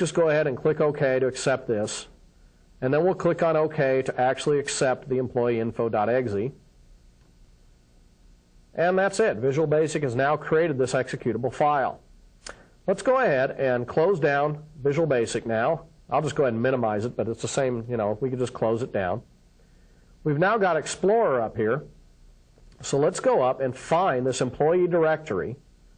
go ahead and click OK to accept this. And then we'll click on OK to actually accept the employeeinfo.exe. And that's it. Visual Basic has now created this executable file. Let's go ahead and close down Visual Basic now. I'll just go ahead and minimize it, but it's the same, we can just close it down. We've now got Explorer up here. So let's go up and find this employee directory.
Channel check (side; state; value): both; identical; correlation 1.00